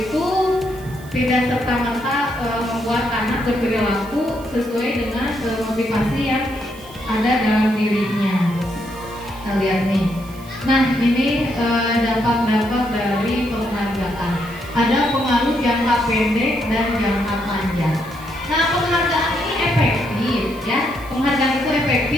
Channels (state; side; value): noise; right; hiss, 22 dB below the sound